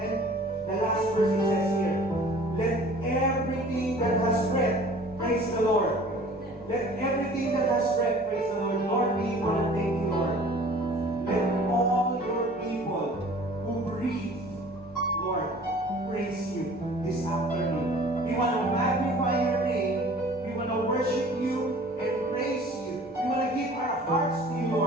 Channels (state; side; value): normal; both; correlation 0.48